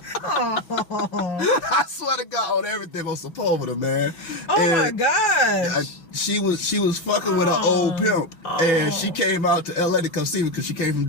I swear to God on everything on Sepulveda, man. My gosh. She was fucking with an old pimp, and she came out to LA to come see me because she came from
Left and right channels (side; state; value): right; late; 6.1 ms